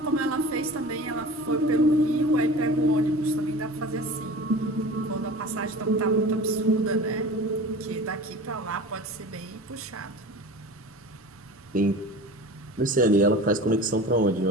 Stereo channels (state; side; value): normal; both; correlation 0.37